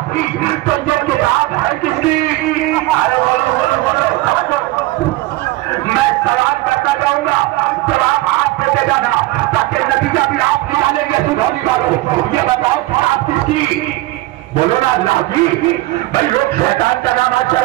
तो ये किताब है किसकी? अरे बोलो बोलो बोलो, मैं सवाल करता जाऊंगा, जवाब आप देते जाना ताकि नतीजा भी आप निकालेंगे। सुधारने वालों ये बताओ किताब किसकी? बोलो ना अल्लाह की। भाई लोग शैतान का नाम आज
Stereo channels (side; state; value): left; quieter; 18.7 dB